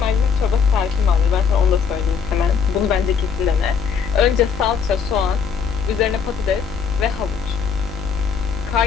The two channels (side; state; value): right; quieter; 6.4 dB